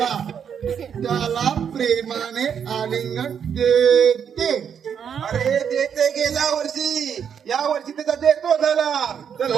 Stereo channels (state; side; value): quieter; left; 7.8 dB